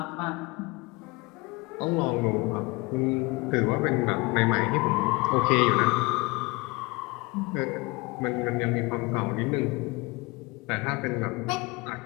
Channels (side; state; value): right; quieter; 25.2 dB